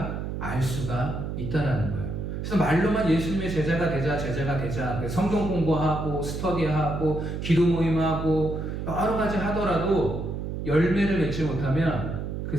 알 수가 있다라는 거예요. 그래서 말로만 예수님의 제자가 되자, 성경 공부하고 스터디하고 기도 모임하고 여러 가지 하더라도 열매를 맺지 못하면 그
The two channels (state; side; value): noise; right; hum, 5 dB below the sound